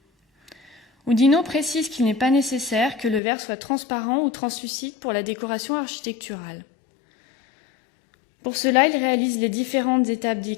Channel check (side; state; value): right; drops out; at 3.2 s